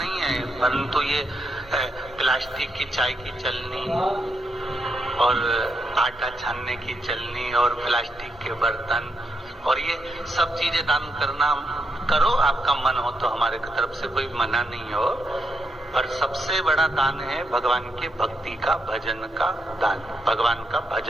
है, परंतु ये प्लास्टिक की चाय की चलनी और आटा छानने की चलनी और प्लास्टिक के बर्तन और ये सब चीजें दान करना करो, आपका मन हो तो, हमारे तरफ से कोई मना नहीं हो। पर सबसे बड़ा दान है भगवान के भक्ति का, भजन का दान, भगवान का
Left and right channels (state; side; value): normal; both; correlation 0.82